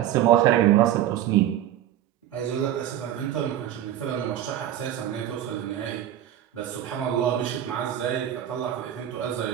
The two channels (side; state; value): left; quieter; 11.6 dB